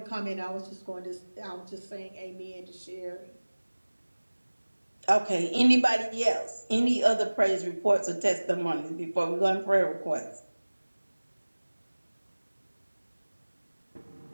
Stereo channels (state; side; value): inverted; both; correlation -1.00